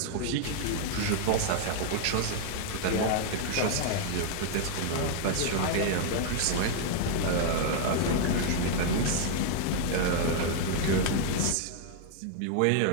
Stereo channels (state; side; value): different; both; correlation 0.00